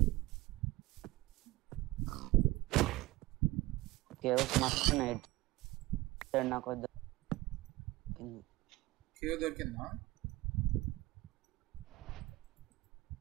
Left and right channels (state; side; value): quieter; left; 19.2 dB